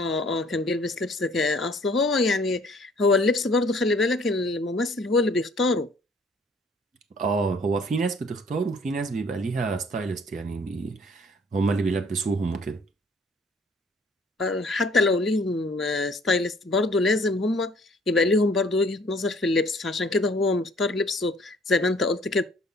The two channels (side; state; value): both; normal; correlation 0.58